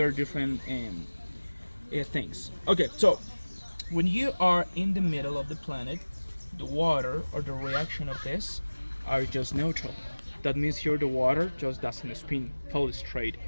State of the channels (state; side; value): inverted; both; correlation -1.00